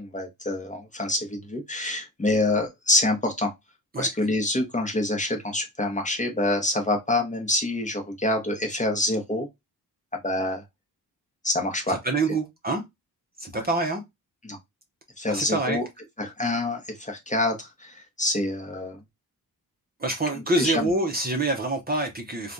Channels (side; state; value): both; normal; correlation 0.29